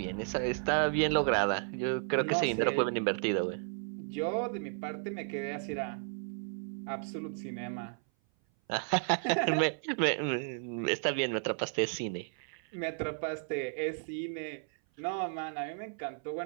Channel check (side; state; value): left; silent; 55 dB below the other